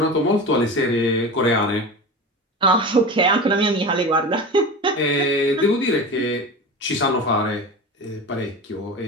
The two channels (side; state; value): both; normal; correlation 0.29